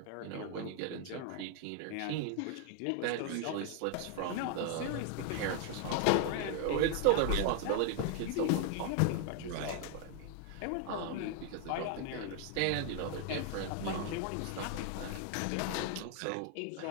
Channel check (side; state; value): both; different; correlation 0.00